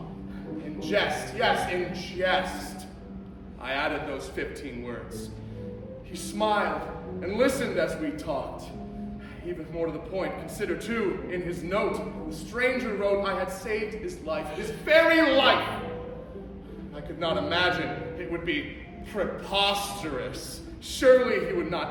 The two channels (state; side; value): identical; both; correlation 1.00